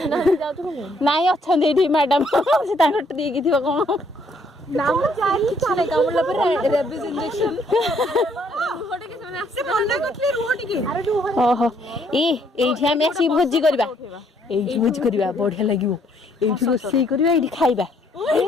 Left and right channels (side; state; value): both; normal; correlation 0.67